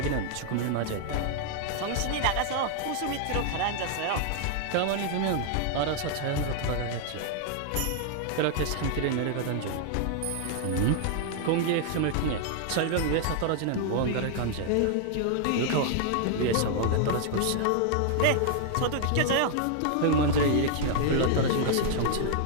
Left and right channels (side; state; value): both; different; correlation 0.00